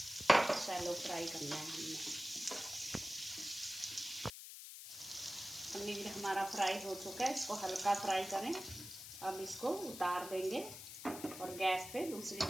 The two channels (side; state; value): left; noise; hiss, 11 dB below the sound